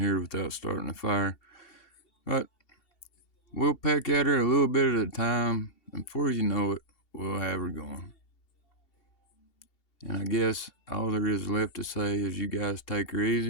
without starting a fire. But we'll peck at her a little bit at a time, and before you know it, we'll have her going. And I guess all there is left to say is you guys take her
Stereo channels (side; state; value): right; late; 2.7 ms